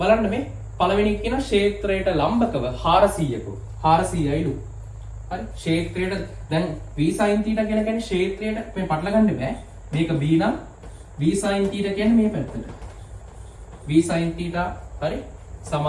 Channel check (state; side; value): identical; both; correlation 1.00